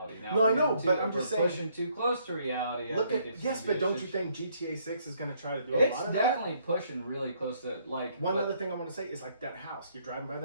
Now, no, I know, but I'm just saying, pushing too close to reality. But don't you think GTA-6 is going to try to do a lot of that? It's definitely pushing really close to like. One other thing I want to say is like that house. You're driving by the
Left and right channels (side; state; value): both; inverted; correlation -0.68